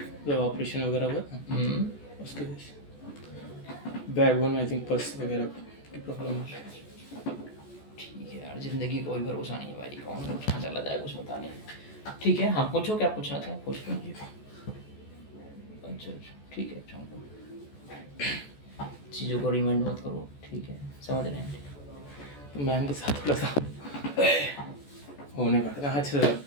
जब ऑपरेशन वगैरह हुआ था उसकी वजह से बैकबोन में आई थिंक पल्स वगैरह की प्रॉब्लम है। ठीक है यार, ज़िंदगी का कोई भरोसा नहीं है भाई, कौन कब कहाँ चला जाए कुछ पता नहीं। ठीक है, हाँ पूछो, क्या पूछना था पूछ लो। अच्छा, ठीक है, चलो चीज़ों को रिमाइंड मत करो, ठीक है, समझ रहे हैं। तो मैम के साथ थोड़ा सा होने पड़ा था। अच्छा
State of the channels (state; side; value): late; right; 14 ms